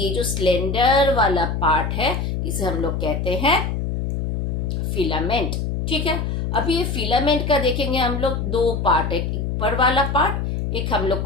जो स्लेंडर वाला पार्ट है इसे हम लोग कहते हैं फिलामेंट। ठीक है, अभी ये फिलामेंट का देखेंगे हम लोग 2 पार्ट है, एक ऊपर वाला पार्ट, एक हम लोग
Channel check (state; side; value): noise; left; hum, 2 dB below the sound